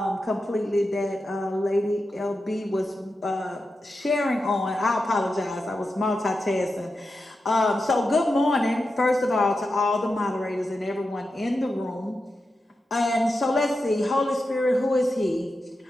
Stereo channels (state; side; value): normal; both; correlation 0.90